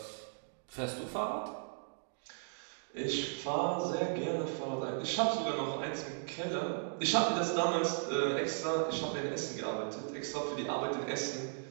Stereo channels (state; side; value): silent; left; digital silence